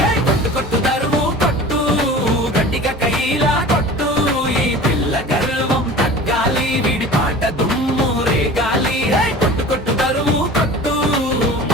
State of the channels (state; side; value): normal; both; correlation 0.39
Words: కొట్టు కొట్టు దరువు కొట్టు గట్టిగా కైలా కొట్టు ఈ పిల్ల గర్వం తగ్గాలి వీడి పాట దుమ్ము రేగాలి కొట్టు కొట్టు దరువు కొట్టు